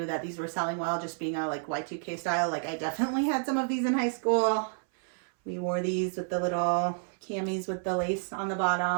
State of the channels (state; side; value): silent; left; 58 dB below the other